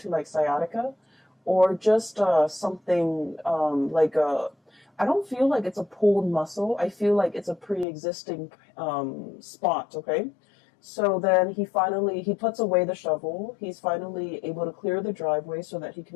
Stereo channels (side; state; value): right; drops out; at 7.9 s